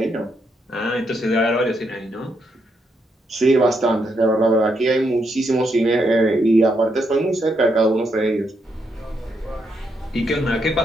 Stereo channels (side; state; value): both; normal; correlation 0.79